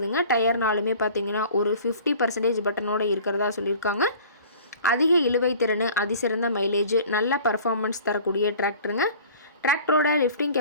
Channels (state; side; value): inverted; both; correlation -0.46